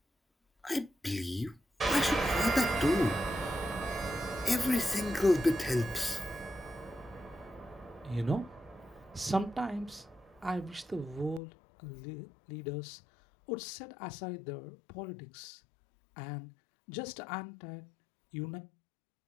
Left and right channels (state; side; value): drops out; right; at 11.4 s